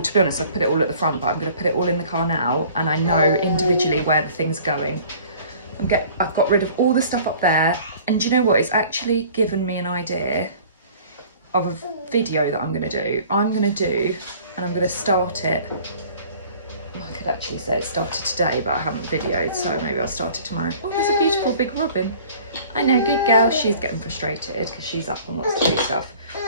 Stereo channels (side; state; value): both; inverted; correlation -0.49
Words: to be honest, I've put it all at the front, but I'm going to put it all in the car now, and I know individually where the thing's going. I've got rid of all the stuff up there, and do you know what? It's actually given me an idea of a video that I'm going to do. And I'm going to start it. I could actually say it started today, but I haven't videoed, so maybe I'll start it tomorrow. Oh, there's a beautiful big robin. I know, good girl. She's getting frustrated because she's up and wants to do stuff.